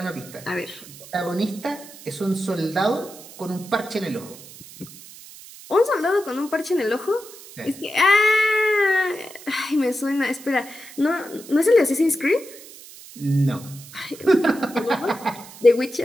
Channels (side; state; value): right; noise; hiss, 18 dB below the sound